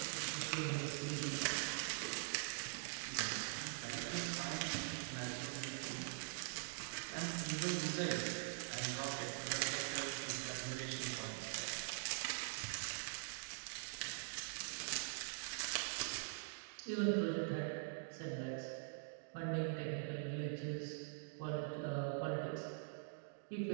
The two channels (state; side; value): silent; left; digital silence